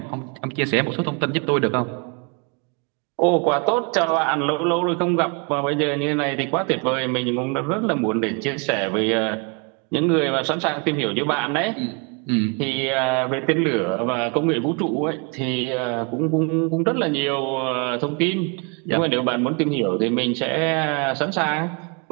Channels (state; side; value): quieter; left; 33.8 dB